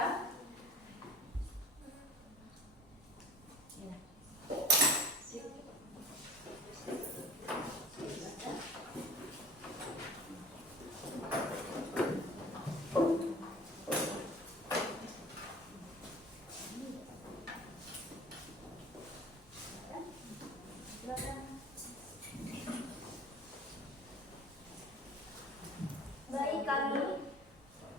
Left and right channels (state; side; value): normal; both; correlation 0.41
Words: Ya. Baik kami.